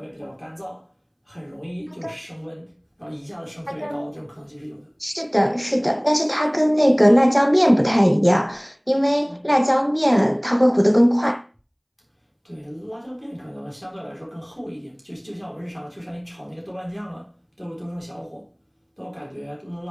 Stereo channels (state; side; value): identical; both; correlation 1.00